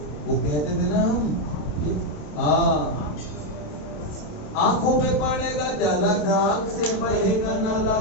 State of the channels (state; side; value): late; right; 27 ms